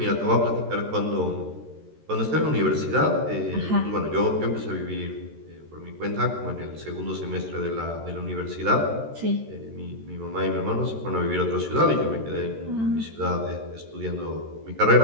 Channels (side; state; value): left; late; 13 ms